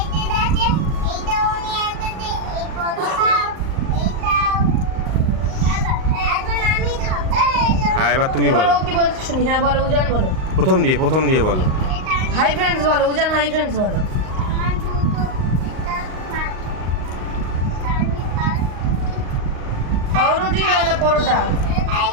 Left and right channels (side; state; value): left; late; 38 ms